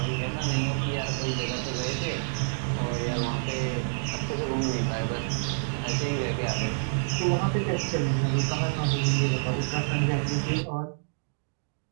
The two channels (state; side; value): silent; left; digital silence